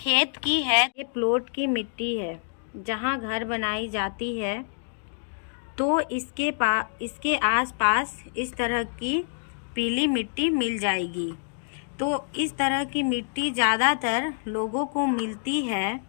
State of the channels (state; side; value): silent; right; digital silence